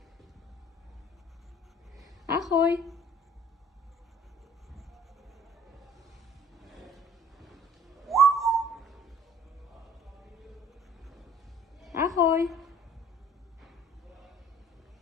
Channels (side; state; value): both; normal; correlation 0.53